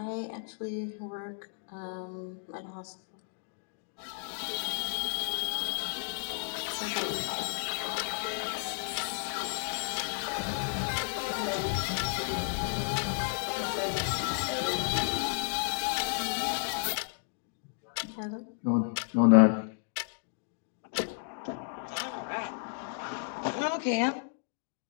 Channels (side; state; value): right; silent; digital silence